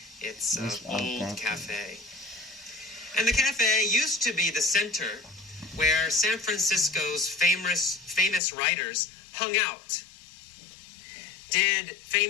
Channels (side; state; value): right; drops out; at 8.4 s